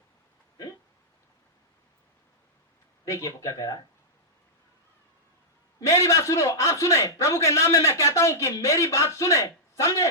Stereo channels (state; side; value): normal; both; correlation -0.10